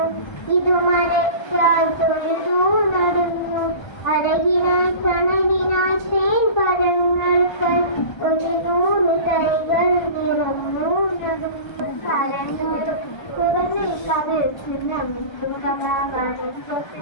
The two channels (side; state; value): right; late; 1.3 ms